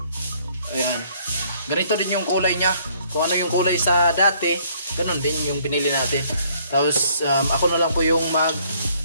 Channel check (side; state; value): both; inverted; correlation -0.63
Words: Ayan. Ganito din yung kulay niya. Kung ano yung kulay sa dati, ganun din yung binili natin. Tapos ako na lang po yung